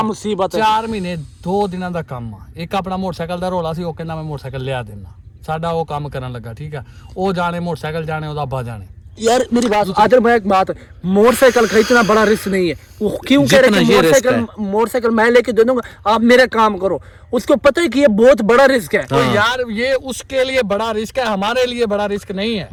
मुसीबत है। 4 महीने 2 ਦਿਨਾਂ ਦਾ ਕੰਮ ਆ। ਇੱਕ ਆਪਣਾ ਮੋਟਰਸਾਈਕਲ ਦਾ ਰੋਲਾ ਸੀ, ਉਹ ਕਹਿੰਦਾ ਮੈਂ ਮੋਟਰਸਾਈਕਲ ਲਿਆ ਦੇਣਾ, ਸਾਡਾ ਉਹ ਕੰਮ ਕਰਨ ਲੱਗਾ, ਠੀਕ ਹੈ। ਉਹ ਜਾਣੇ ਮੋਟਰਸਾਈਕਲ ਜਾਣੇ, ਉਹਦਾ ਅੱਬਾ जाने। यार मेरी बात आदर, मैं एक बात, मोटरसाइकिल खरीदना बड़ा रिस्क नहीं है। वो क्यों कह रहे कि मोटरसाइकिल मैं लेके दे दूंगा, आप मेरा काम करो। उसको पता है कि ये बहुत बड़ा रिस्क है। तो यार ये उसके लिए बड़ा रिस्क है, हमारे लिए बड़ा रिस्क नहीं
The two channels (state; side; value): identical; both; correlation 1.00